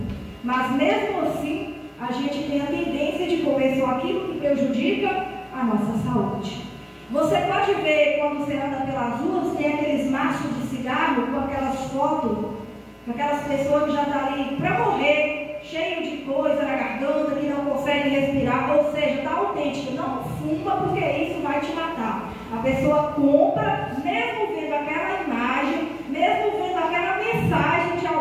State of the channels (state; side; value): identical; both; correlation 1.00